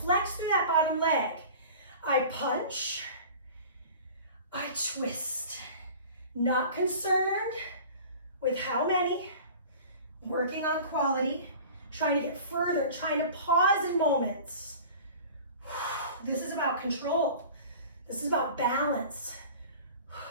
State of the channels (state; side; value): inverted; both; correlation -0.41